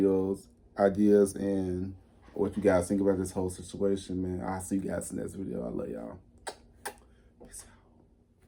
ideas, and what you guys think about this whole situation, man. I'll see you guys in the next video. I love y'all. Peace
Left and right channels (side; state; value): both; identical; correlation 1.00